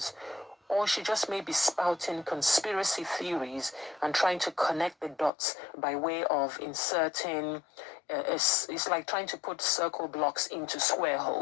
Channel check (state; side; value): drops out; right; at 5.3 s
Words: or she just may be spouting conspiracy theories and trying to connect the dots by way of inserting, it's like trying to put circle blocks into square